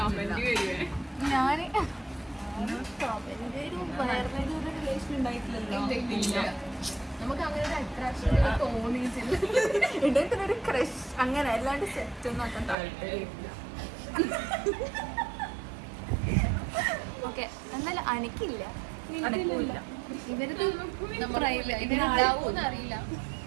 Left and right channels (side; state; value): left; drops out; at 12.8 s